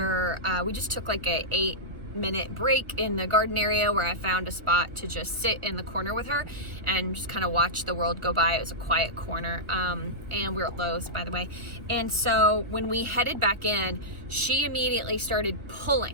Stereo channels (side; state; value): left; late; 1.4 ms